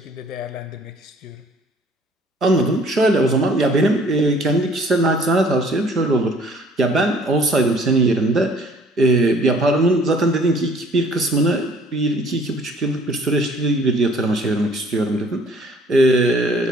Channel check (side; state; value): both; normal; correlation 0.56